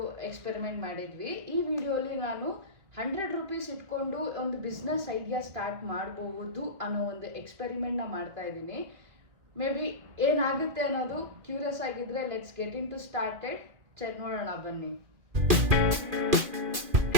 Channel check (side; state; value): left; late; 2.4 ms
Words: ಎಕ್ಸ್ಪೆರಿಮೆಂಟ್ ಮಾಡಿದ್ವಿ. ಈ ವಿಡಿಯೋಲಿ ನಾನು 100 ರೂಪೀಸ್ ಇಟ್ಕೊಂಡು ಒಂದು ಬಿಸ್ನೆಸ್ ಐಡಿಯಾ ಸ್ಟಾರ್ಟ್ ಮಾಡಬಹುದು ಅನ್ನೋ ಒಂದು ಎಕ್ಸ್ಪೆರಿಮೆಂಟ್ನ ಮಾಡ್ತಾ ಇದ್ದೀನಿ. ಮೇ ಬಿ ಏನಾಗುತ್ತೆ ಅನ್ನೋದು ಕ್ಯೂರಿಯಸ್ ಆಗಿದ್ರೆ let's get in to started. ನೋಡೋಣ ಬನ್ನಿ.